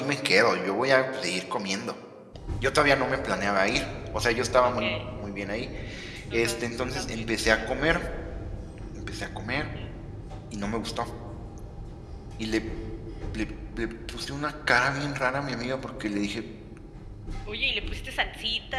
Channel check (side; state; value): both; identical; correlation 1.00